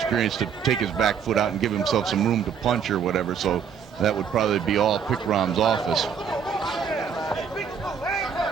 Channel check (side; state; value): left; quieter; 7.2 dB